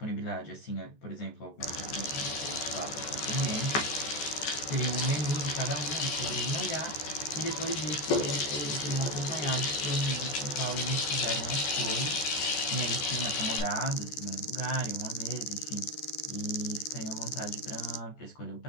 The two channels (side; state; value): right; late; 14 ms